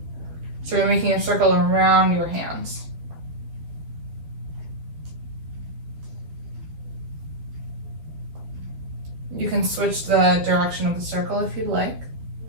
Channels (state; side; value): late; left; 12 ms